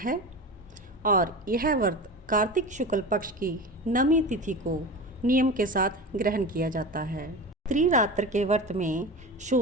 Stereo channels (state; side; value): normal; both; correlation 0.29